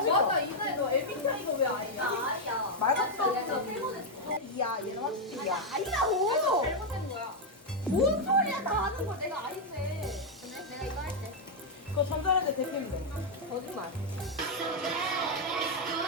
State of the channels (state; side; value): normal; both; correlation -0.01